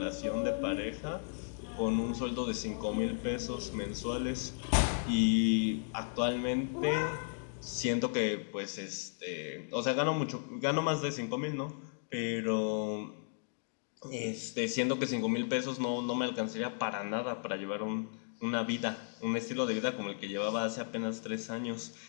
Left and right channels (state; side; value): silent; right; digital silence